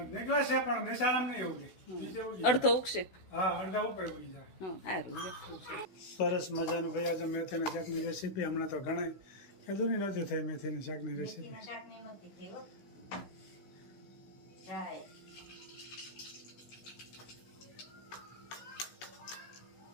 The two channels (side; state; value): right; late; 16 ms